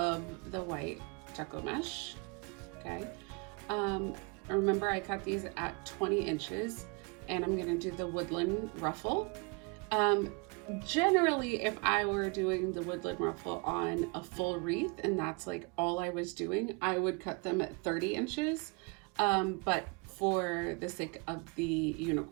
the white Deco Mesh, okay? Remember I cut these at 20 inches and I'm gonna do the woodland ruffle. Generally, if I were doing the woodland ruffle on a full wreath and that's like all I was doing, I would cut them at 30 inches. But for the sake of the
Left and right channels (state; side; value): quieter; left; 31.3 dB